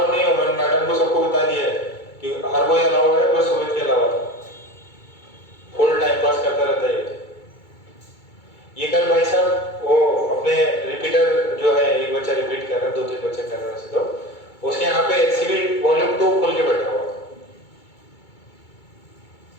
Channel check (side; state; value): right; late; 2.3 ms